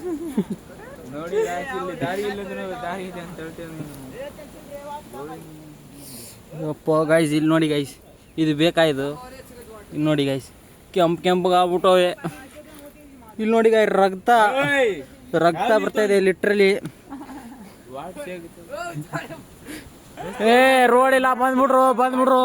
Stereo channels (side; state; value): both; identical; correlation 1.00